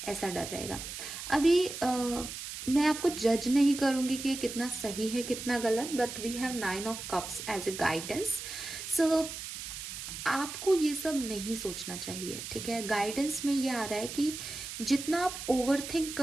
ऐसा डर रहेगा। अभी मैं आपको जज नहीं करूंगी कि ये कितना सही है कितना गलत, but we have 9 of cups as a guidance. So आपको ये सब नहीं सोचना चाहिए, ठीक है। गाइडेंस में ये आ रहा है कि जितना आप ओवरथिंक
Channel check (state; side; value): noise; right; hiss, 8 dB below the sound